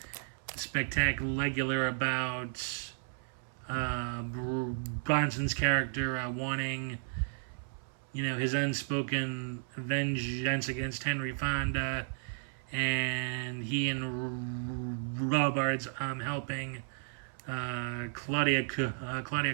spectacular about Bronson's character wanting his unspoken vengeance against Henry Fonda, and he and Robards helping Claudia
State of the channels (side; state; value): left; silent; 55 dB below the other